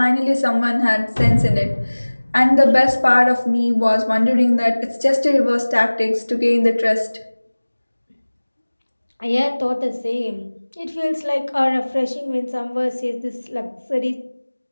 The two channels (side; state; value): both; inverted; correlation -1.00